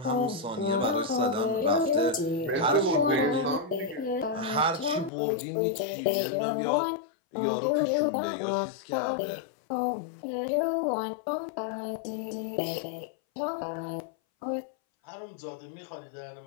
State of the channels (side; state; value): right; drops out; at 5.1 s